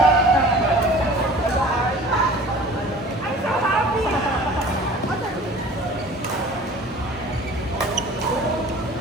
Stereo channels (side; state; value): both; normal; correlation 0.44